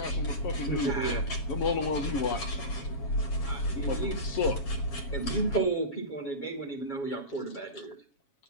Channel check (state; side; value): late; right; 7.2 ms